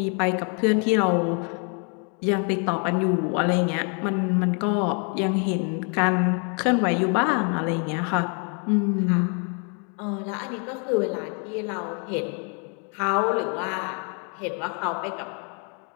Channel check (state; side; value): quieter; right; 38.1 dB